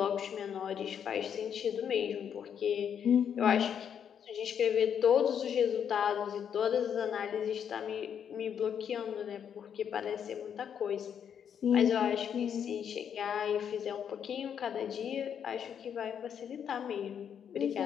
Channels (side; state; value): right; quieter; 8.2 dB